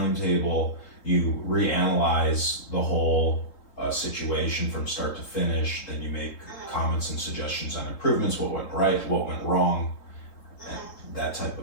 You reanalyze the whole situation from start to finish. Then you make comments and suggestions on improvements, what went right, what went wrong, and that type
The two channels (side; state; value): right; late; 3.7 ms